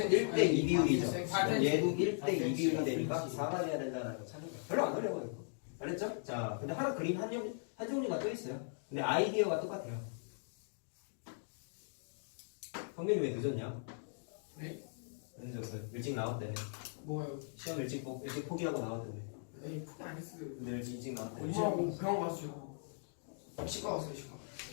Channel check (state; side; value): silent; right; digital silence